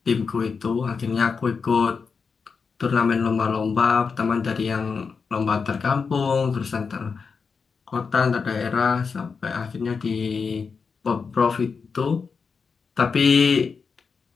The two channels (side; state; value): right; quieter; 5.4 dB